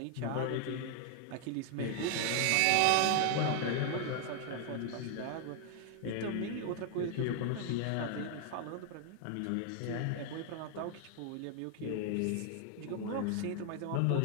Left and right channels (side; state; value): both; different; correlation 0.00